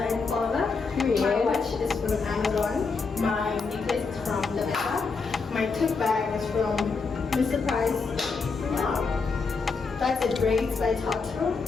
and Father. My watch is from Amazon. My necklace is from Lavetta. My tote bag is from Mr. Price. Yeah. That's it. Braids by Tato.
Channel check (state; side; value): quieter; right; 4.6 dB